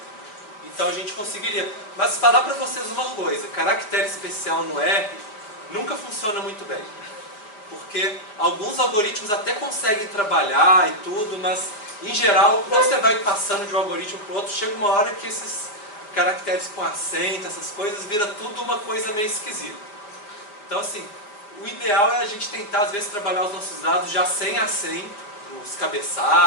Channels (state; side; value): late; right; 4.9 ms